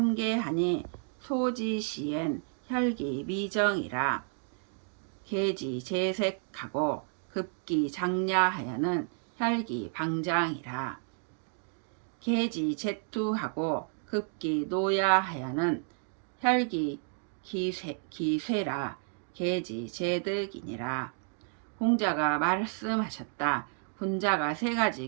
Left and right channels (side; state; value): left; silent; 57 dB below the other